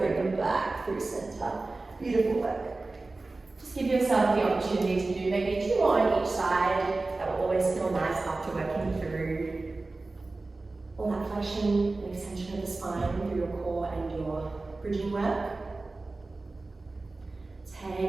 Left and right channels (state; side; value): quieter; left; 3.3 dB